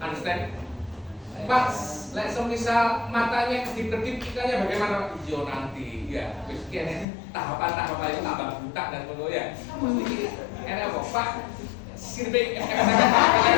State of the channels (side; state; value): right; drops out; at 7.1 s